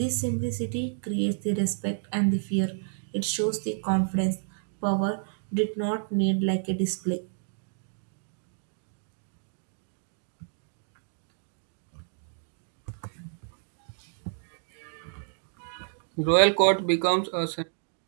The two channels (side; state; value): left; silent; digital silence